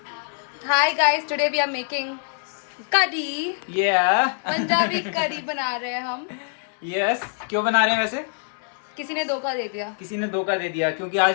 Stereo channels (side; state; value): right; silent; digital silence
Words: Hi guys, today we are making kadhi. Punjabi कढ़ी बना रहे हैं हम। यस, क्यों बना रहे हैं वैसे? किसी ने धोखा दे दिया। किसी ने धोखा दे दिया, क्योंकि